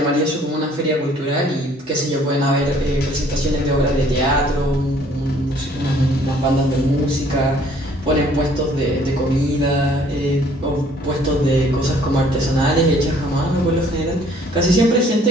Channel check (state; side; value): normal; both; correlation 0.59